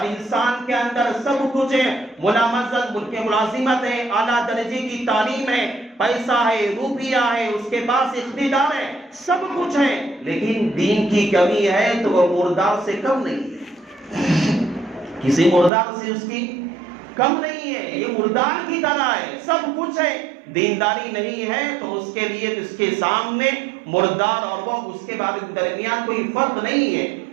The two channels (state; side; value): drops out; left; at 15.7 s